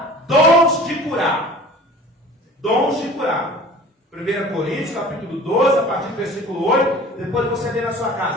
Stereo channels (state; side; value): normal; both; correlation 0.44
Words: dons de curar. Dons de curar. 1 Coríntios, capítulo 12, a partir do versículo 8. Depois você lê na sua